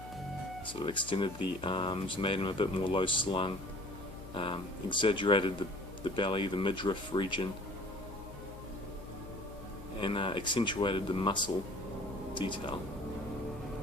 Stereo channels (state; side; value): noise; left; hum, 14 dB below the sound